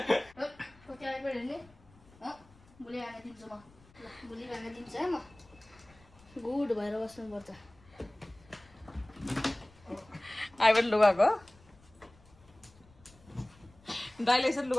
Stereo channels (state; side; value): noise; left; rumble, 26 dB below the sound